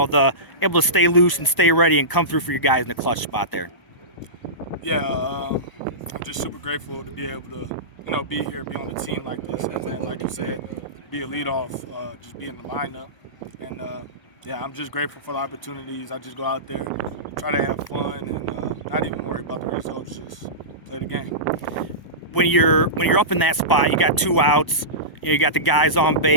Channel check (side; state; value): right; late; 1.0 ms